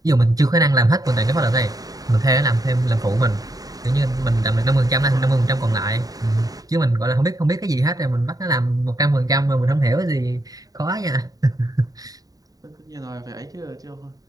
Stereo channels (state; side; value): late; left; 0.18 ms